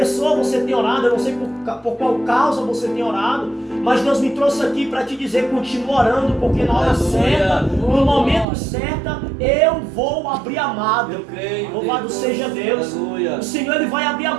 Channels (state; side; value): drops out; left; at 8.5 s